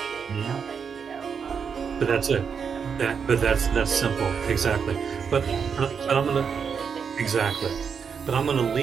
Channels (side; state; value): left; quieter; 6.5 dB